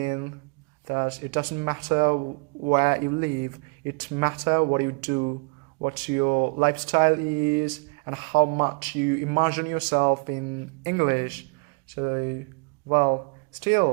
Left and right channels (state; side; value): quieter; left; 33.5 dB